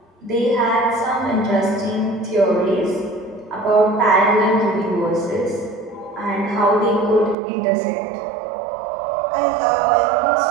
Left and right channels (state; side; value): drops out; left; at 7.4 s